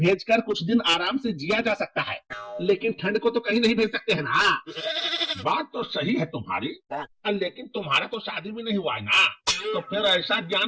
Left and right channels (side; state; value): both; identical; correlation 1.00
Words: कुछ दिन आराम से जिया जा सकता है, लेकिन ठंड को तो कहीं नहीं भेज सकते हैं ना। बात तो सही है तुम्हारी, लेकिन तुम्हारा तो शादी भी नहीं हुआ है ना, तो फिर ऐसा